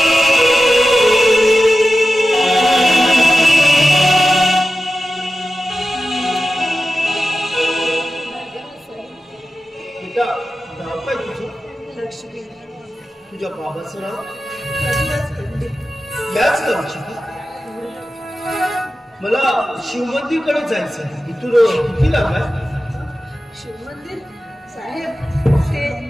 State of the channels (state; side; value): normal; both; correlation 0.93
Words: नाव काय तुझं? लक्ष्मी. तुझ्या बाबाचं नाव? याच गावची का? मला शिवमंदिरकडे जायचं आहे. इथून किती लांब आहे? शिवमंदिर साहेब,